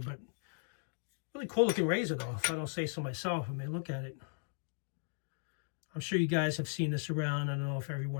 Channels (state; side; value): silent; right; digital silence